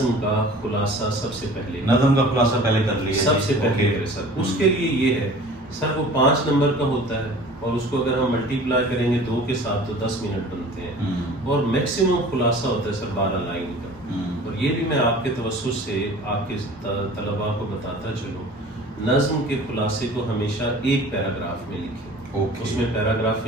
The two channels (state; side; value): normal; both; correlation 0.44